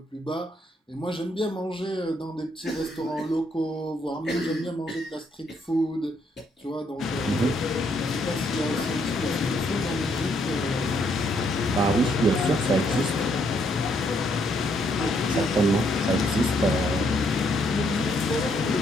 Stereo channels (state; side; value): normal; both; correlation 0.72